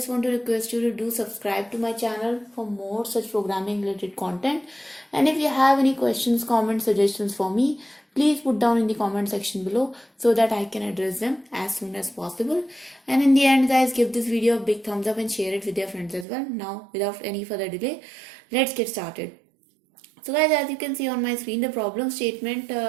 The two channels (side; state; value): left; drops out; at 16.2 s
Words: want to request you to do subscribe to my channel for more such programming related content. And if you have any questions, comments, suggestions for me, please put down in the comment section below so that I can address them as soon as possible. And in the end guys, give this video a big thumbs up and share it with your friends as well. Now without any further delay, let's get started. So guys, as you can see on my screen, the problem statement